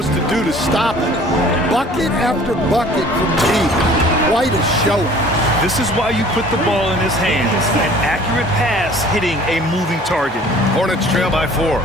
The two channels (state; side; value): normal; both; correlation 0.50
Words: to do to stop it? Bucket after bucket from deep. Quite a show. This is why you put the ball in his hands. An accurate pass hitting a moving target. Hornets trail by 4.